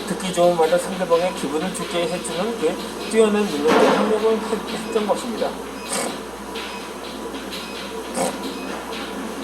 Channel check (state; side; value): noise; right; hum, 21 dB below the sound